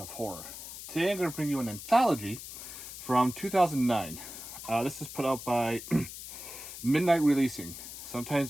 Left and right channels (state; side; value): noise; left; hiss, 11 dB below the sound